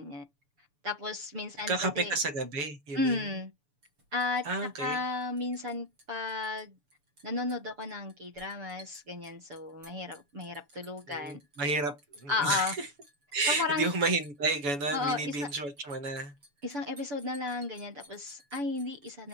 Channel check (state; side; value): late; left; 7.0 ms